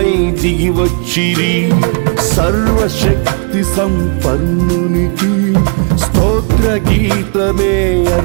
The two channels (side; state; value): left; quieter; 38.5 dB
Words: దిగి వచ్చిరి. సర్వశక్తి సంపన్నునికి స్తోత్ర గీతమే